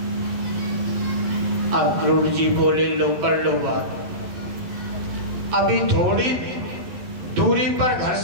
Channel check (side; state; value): left; late; 11 ms